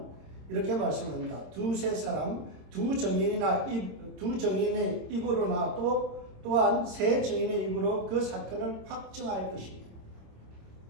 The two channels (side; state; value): left; late; 26 ms